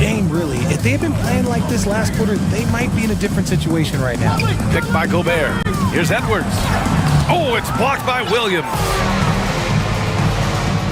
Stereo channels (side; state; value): both; identical; correlation 1.00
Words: really. If they had been playing like this last quarter, they might be in a different situation right now. Picked by Gobert. Here's Edwards. Oh, it's blocked by Williams.